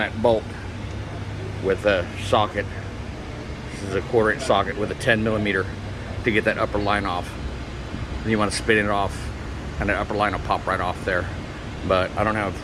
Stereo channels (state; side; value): identical; both; correlation 1.00